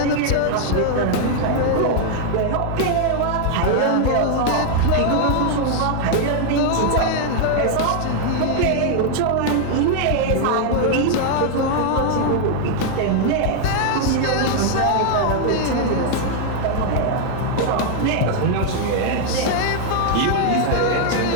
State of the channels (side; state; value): both; different; correlation 0.00